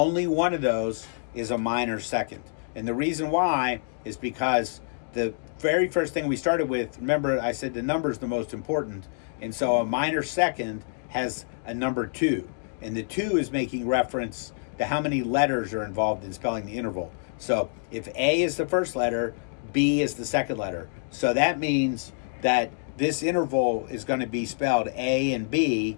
one of those is a minor second. And the reason why is because the very first thing we started with, remember I said the number is the most important, and so a minor second has a number 2, and the 2 is making reference to how many letters are involved in spelling the interval. So if A is the first letter, B is the second letter. So that means that this interval is going to be spelled A and B,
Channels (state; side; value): silent; right; digital silence